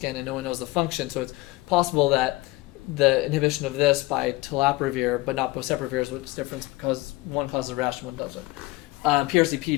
and no one knows the function. So it's possible that the inhibition of this by telaprevir, but not boceprevir, is what's different because one causes a rash and one doesn't.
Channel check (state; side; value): quieter; right; 20.7 dB